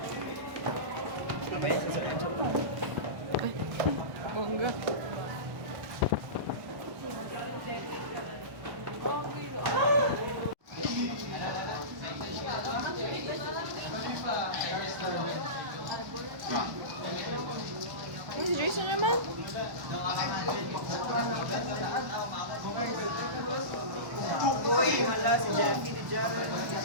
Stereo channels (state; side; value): late; left; 1.1 ms